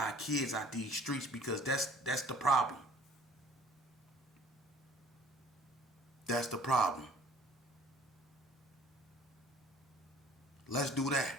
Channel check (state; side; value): normal; both; correlation 0.52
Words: kids out these streets, because that's the problem. That's the problem. Let's do that.